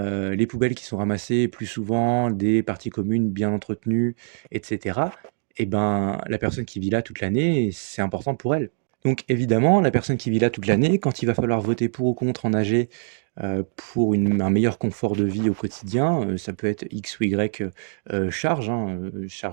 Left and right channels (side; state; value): left; silent; digital silence